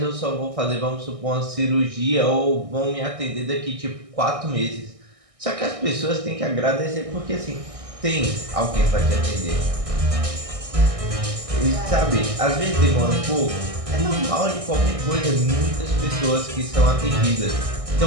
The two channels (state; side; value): late; left; 1.6 ms